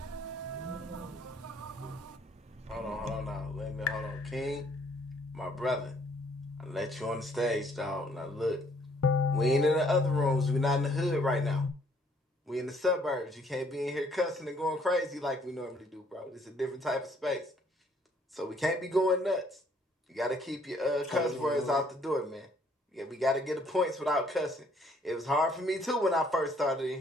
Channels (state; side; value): normal; both; correlation 0.64